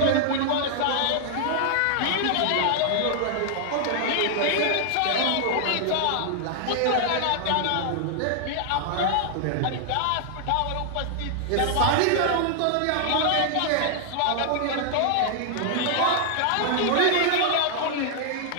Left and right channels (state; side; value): different; both; correlation 0.00